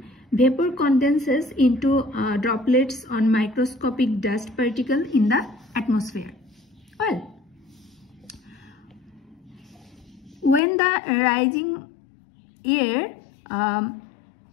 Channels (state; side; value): drops out; right; at 10.6 s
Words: Vapor condenses into droplets on microscopic dust particle in the atmosphere. Well, when the rising air